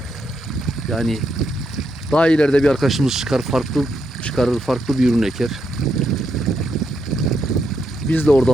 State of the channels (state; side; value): normal; both; correlation 0.80